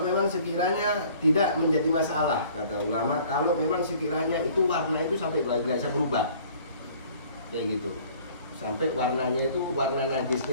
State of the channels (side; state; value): both; inverted; correlation -0.53